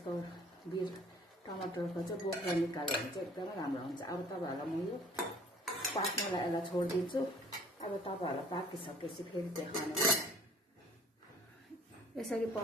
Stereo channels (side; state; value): both; normal; correlation 0.52